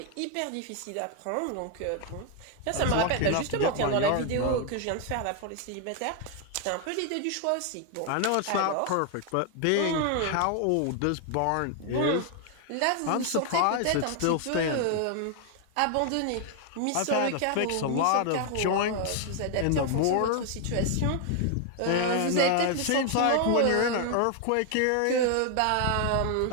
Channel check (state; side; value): different; both; correlation 0.01